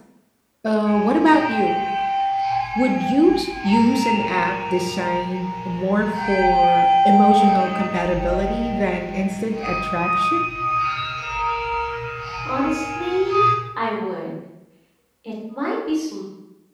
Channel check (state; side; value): identical; both; correlation 1.00